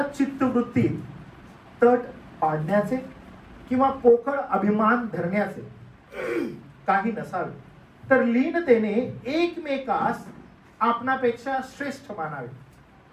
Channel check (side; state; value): both; identical; correlation 1.00